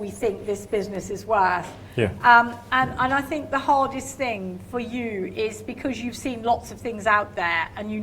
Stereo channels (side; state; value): both; identical; correlation 1.00